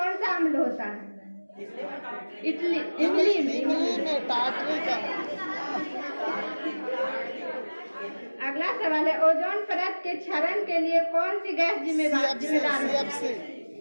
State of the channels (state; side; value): inverted; both; correlation -1.00